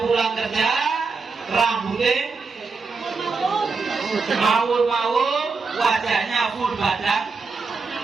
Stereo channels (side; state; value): left; quieter; 4.5 dB